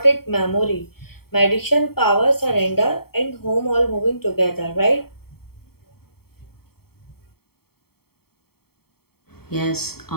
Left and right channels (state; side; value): late; right; 0.95 ms